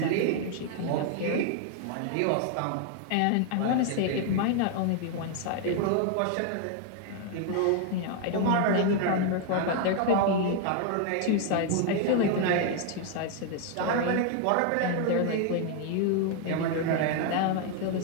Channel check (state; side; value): different; both; correlation 0.00